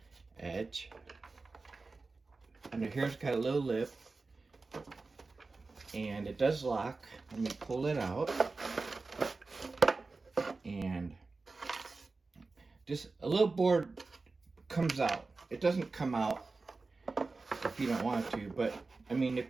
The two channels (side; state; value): left; quieter; 3.8 dB